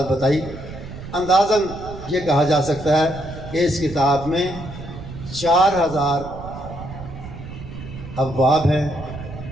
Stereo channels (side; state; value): right; noise; rumble, 12 dB below the sound